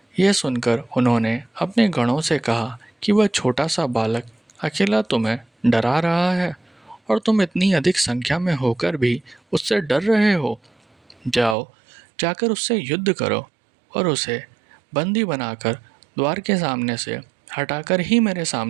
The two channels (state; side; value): drops out; left; at 11.6 s